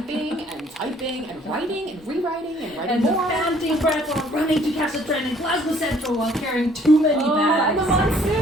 and writing and rewriting and writing and more. the panting breath while running to catch a train in Glasgow Central while carrying too many bags. And the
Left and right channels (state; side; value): normal; both; correlation 0.60